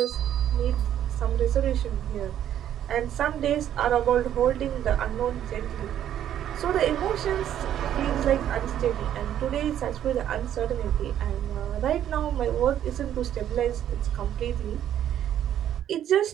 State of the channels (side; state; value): left; quieter; 10.7 dB